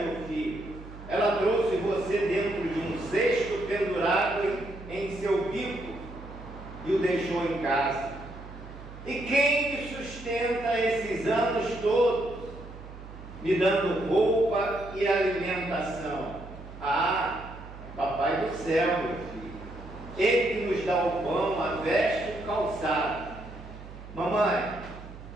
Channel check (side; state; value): right; noise; hum, 15 dB below the sound